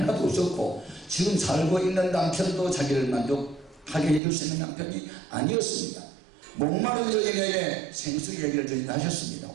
없었고 지금 살고 있는 남편도 자기를 만족하게 해줄 수 있는 남편이 아니었습니다. 목마른 여인에게 생수 얘기를 저희는 하셨습니다.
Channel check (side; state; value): left; drops out; at 4.2 s